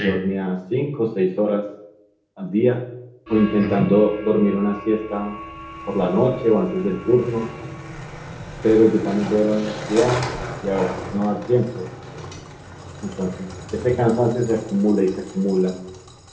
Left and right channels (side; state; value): both; identical; correlation 1.00